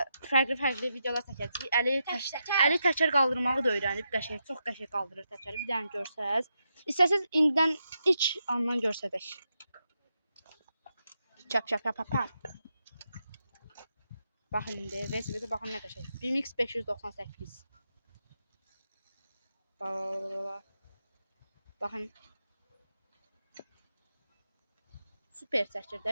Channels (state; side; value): inverted; both; correlation -0.85